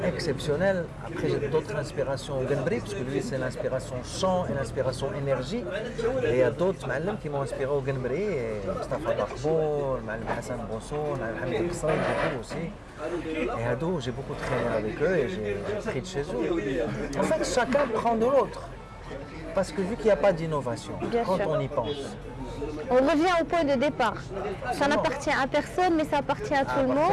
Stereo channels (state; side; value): identical; both; correlation 1.00